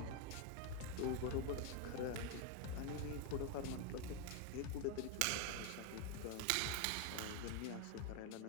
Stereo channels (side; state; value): both; different; correlation 0.01